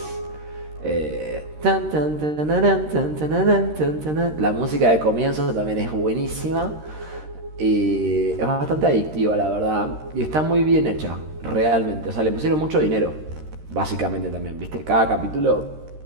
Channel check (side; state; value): left; late; 13 ms